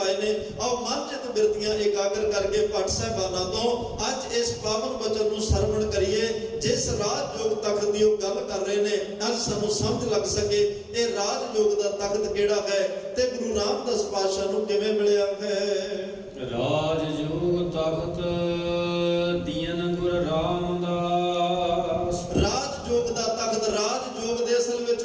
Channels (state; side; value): identical; both; correlation 1.00